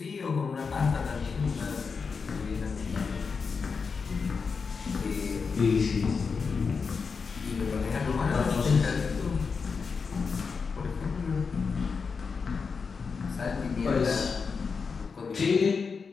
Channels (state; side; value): quieter; right; 5.3 dB